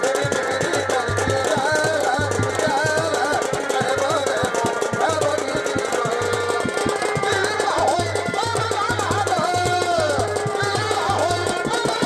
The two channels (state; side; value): identical; both; correlation 1.00